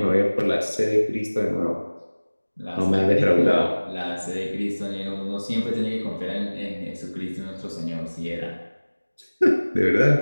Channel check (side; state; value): both; inverted; correlation -1.00